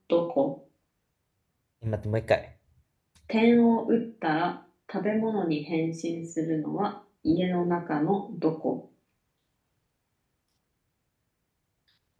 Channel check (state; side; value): identical; both; correlation 1.00